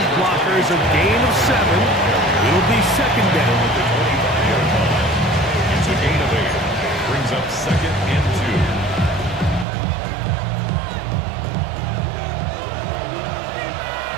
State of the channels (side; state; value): left; drops out; at 9.7 s